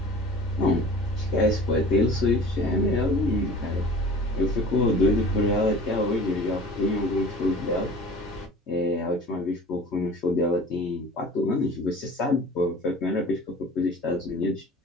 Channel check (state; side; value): normal; both; correlation 0.42